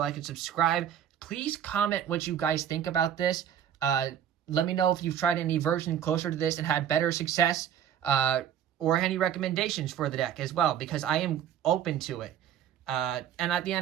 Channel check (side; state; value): left; quieter; 9.6 dB